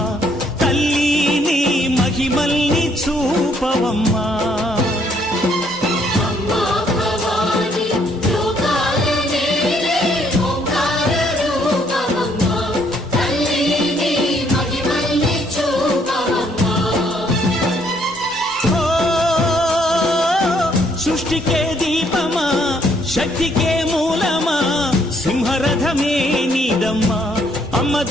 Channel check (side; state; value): both; normal; correlation 0.68